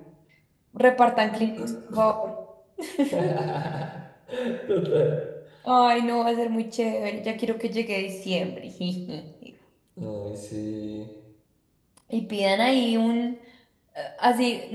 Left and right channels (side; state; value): both; identical; correlation 1.00